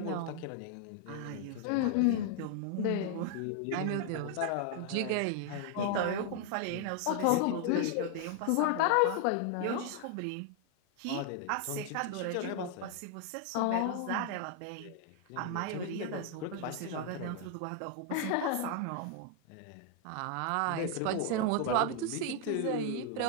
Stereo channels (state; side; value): different; both; correlation 0.00